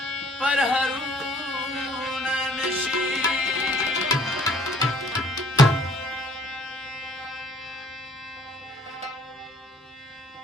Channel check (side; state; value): both; normal; correlation 0.58